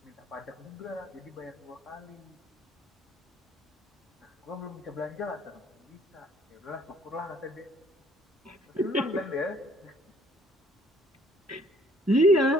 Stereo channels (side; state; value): both; normal; correlation 0.60